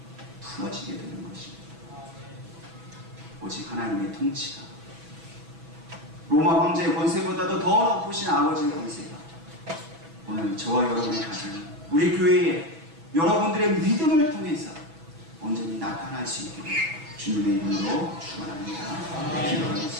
풀어지게 되는 것입니다. 오직 하나님의 통치가 로마 황제의 권세보다도 더 높으신 아버지의 권세가 오늘 저와 여러분의 가정, 우리 교회에 여러분들의 믿음을 통해서 온전히 나타날 수 있게 주님의 이름으로 축원합니다.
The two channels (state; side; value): late; left; 6.1 ms